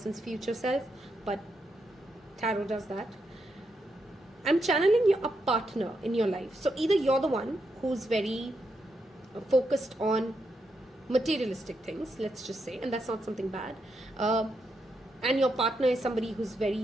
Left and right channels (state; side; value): normal; both; correlation 0.82